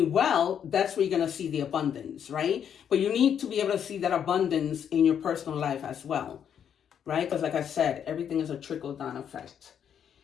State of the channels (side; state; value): right; quieter; 8.5 dB